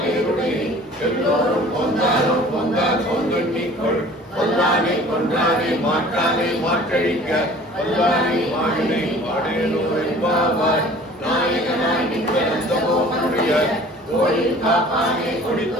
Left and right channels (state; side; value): normal; both; correlation 0.47